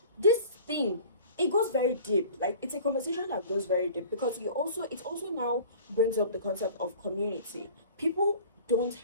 this thing, it goes very deep. Like, it's a conversation that goes very deep, because it also now brings up the concept of community. People don't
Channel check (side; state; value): both; inverted; correlation -0.44